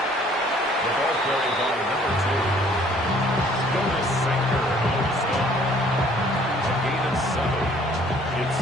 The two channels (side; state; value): both; normal; correlation 0.58